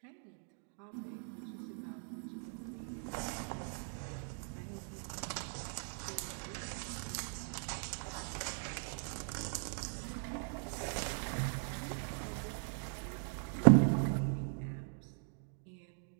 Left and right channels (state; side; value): silent; left; 51 dB below the other